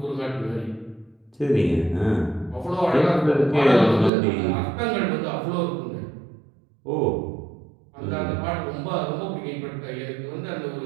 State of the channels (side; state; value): left; drops out; at 4.1 s